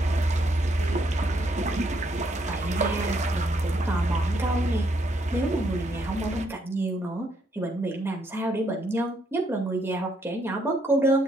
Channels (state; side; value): normal; both; correlation 0.73